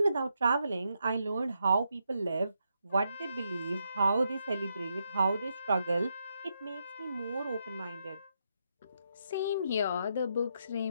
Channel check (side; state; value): both; inverted; correlation -0.81